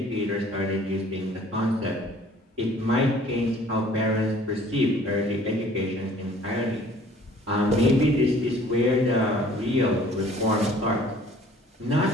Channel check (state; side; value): normal; both; correlation 0.53